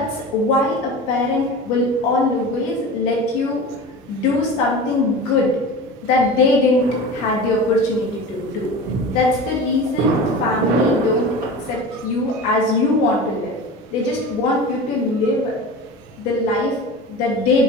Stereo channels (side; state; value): both; normal; correlation 0.33